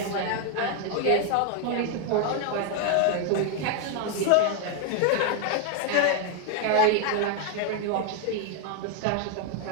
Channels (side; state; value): both; different; correlation 0.00